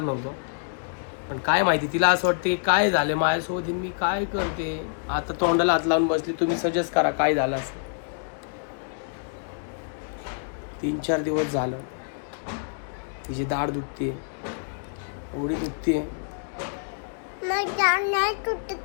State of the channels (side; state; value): right; silent; digital silence